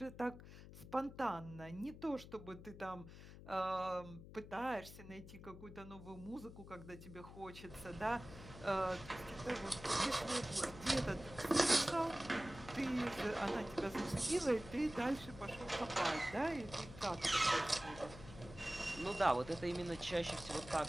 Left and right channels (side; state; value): left; noise; hum, 15 dB below the sound